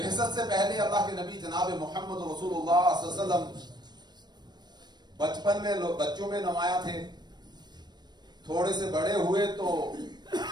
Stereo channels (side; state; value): left; late; 0.21 ms